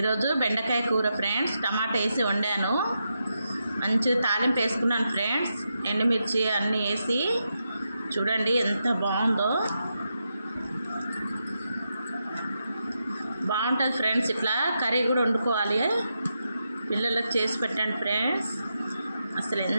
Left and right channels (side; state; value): both; inverted; correlation -0.85